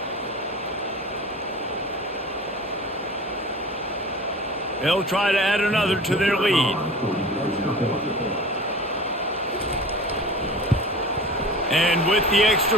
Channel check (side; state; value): both; normal; correlation 0.37